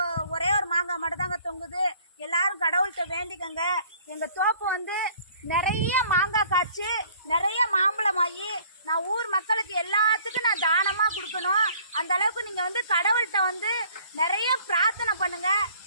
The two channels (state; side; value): inverted; both; correlation -0.56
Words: ஒரே ஒரு மாங்காய் மட்டும்தாங்க தொங்குது. எல்லாரும் கடவுள்கிட்ட வேண்டிக்கங்க. எங்கள் தோப்பு வந்து நிறைய மாங்காய் காய்ச்சி நிறைய மாம்பழம் ஆகி நான் ஊர் மக்களுக்கு எல்லாத்துக்கும் நான் தானமாக கொடுக்கணும். அந்த அளவுக்கு நீங்கள் வந்து கடவுள்கிட்ட வந்து நிறைய பிரார்த்தனை பண்ணுங்க.